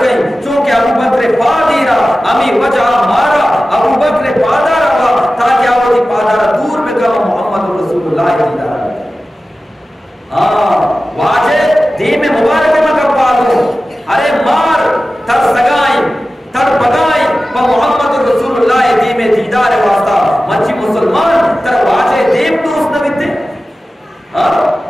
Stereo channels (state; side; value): normal; both; correlation 0.95